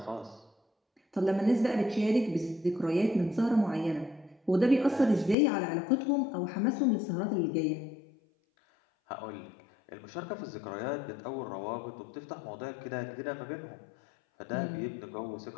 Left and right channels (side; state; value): right; drops out; at 5.4 s